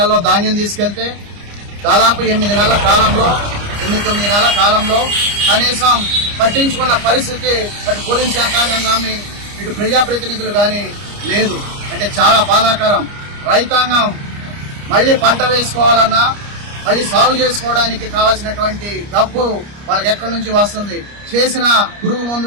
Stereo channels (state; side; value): late; left; 29 ms